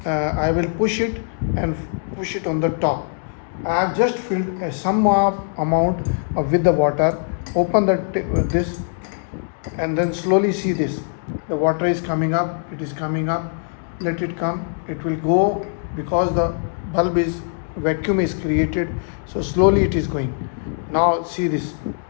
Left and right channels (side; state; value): right; silent; digital silence